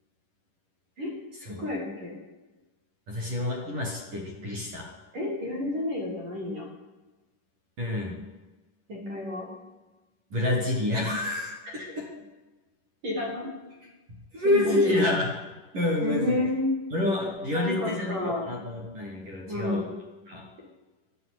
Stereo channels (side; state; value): left; late; 11 ms